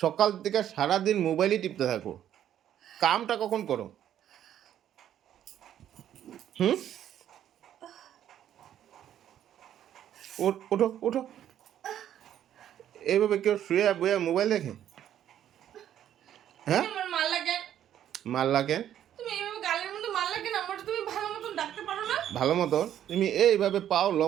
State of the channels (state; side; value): quieter; left; 10.8 dB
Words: থেকে সারাদিন মোবাইলই টিপতে থাকো কামটা কখন করো হুম ওঠো ওঠো এইভাবে কেউ শুয়ে বইয়া মোবাইল দেখে হ্যাঁ আমার মারলা কেন মারলা কেন তুমি এইভাবে গালের মধ্যে মারলা কেন আমার তুমি ভালো মতন ডাকতে পারো না ভালো মতো তুমি এইভাবে পাও